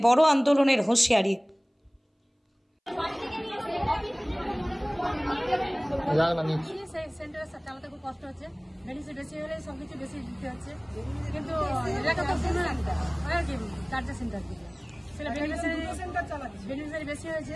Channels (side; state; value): both; identical; correlation 1.00